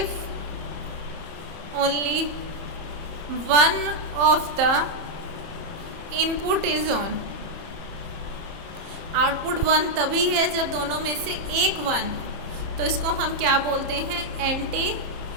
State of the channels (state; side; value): late; left; 30 ms